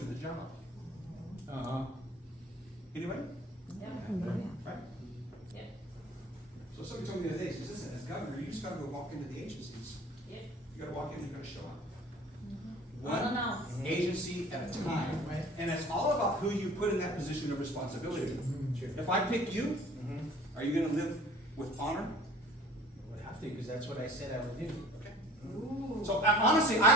the job. Uh-huh. Anyway? Yeah. Right? Yeah. So somebody told me the other day, she says, listen, as governor, you just gotta go walk into the agencies. Yeah. You gotta walk in, you gotta show up. Unannounced. One agency at a time. Right. And it's all about who you put in that position of responsibility. Sure. If I pick you, Mm-hmm. are you gonna live with honor? I would have to, because that's what I said I would do. Okay. Ooh. So honestly,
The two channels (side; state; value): both; normal; correlation 0.48